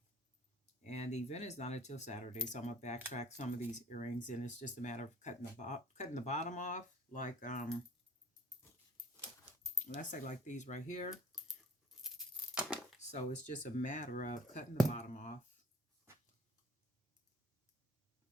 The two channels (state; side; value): normal; both; correlation 0.49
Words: and the event is not until Saturday, so I'm going to backtrack some of these earrings, and it's just a matter of cutting the bottom off, like let's say like these right here. So it's just a matter of cutting the bottom off